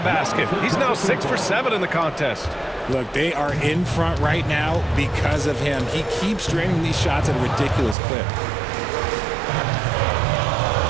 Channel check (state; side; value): drops out; left; at 8.0 s